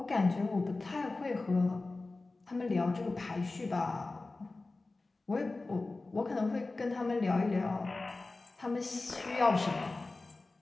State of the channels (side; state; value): right; quieter; 3.4 dB